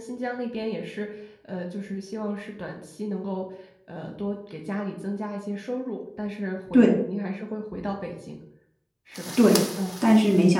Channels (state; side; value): identical; both; correlation 1.00